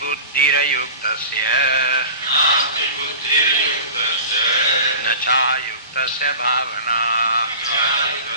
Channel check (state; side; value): inverted; both; correlation -0.36